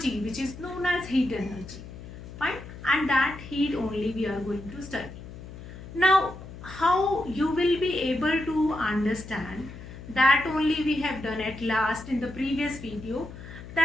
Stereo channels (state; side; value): noise; left; hum, 13 dB below the sound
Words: which is known as heat energy, fine, and that heat only we are going to study. Now how you will be able to understand, that only we have done at last in the previous video,